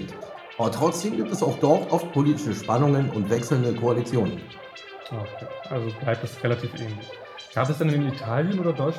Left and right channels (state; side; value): identical; both; correlation 1.00